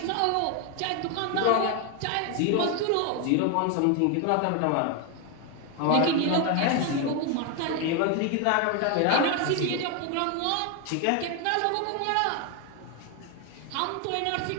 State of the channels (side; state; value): both; different; correlation 0.01